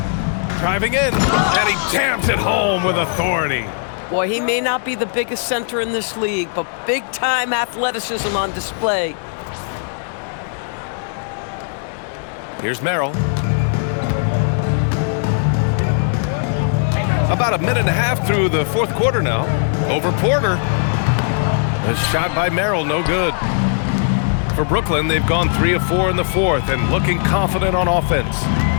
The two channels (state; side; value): silent; right; digital silence